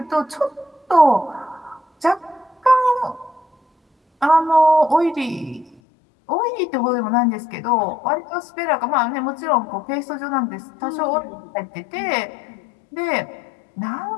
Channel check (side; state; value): right; drops out; at 5.8 s